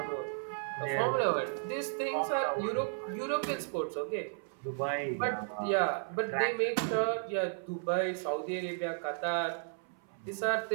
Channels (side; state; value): left; silent; 55 dB below the other